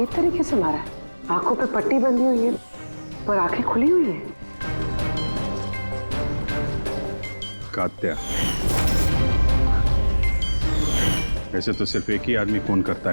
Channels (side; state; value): both; inverted; correlation -1.00